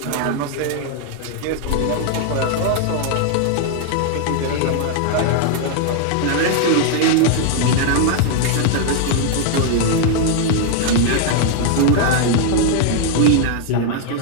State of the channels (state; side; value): different; both; correlation 0.00